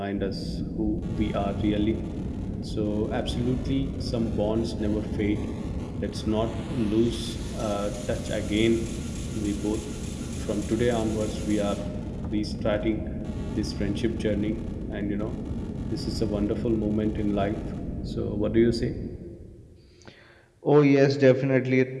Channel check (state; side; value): identical; both; correlation 1.00